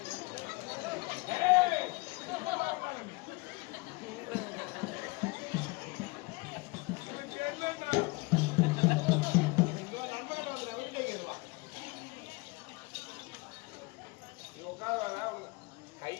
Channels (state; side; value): quieter; right; 25.7 dB